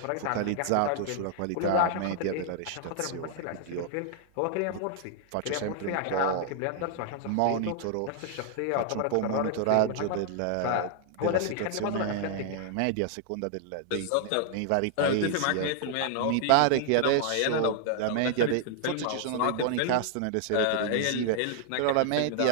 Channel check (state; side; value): different; both; correlation 0.00